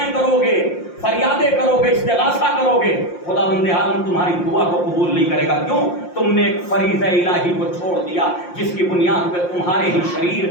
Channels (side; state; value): right; late; 5.7 ms